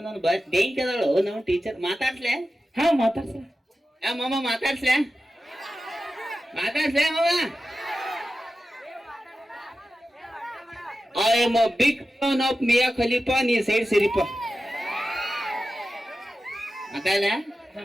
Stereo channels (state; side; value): normal; both; correlation 0.93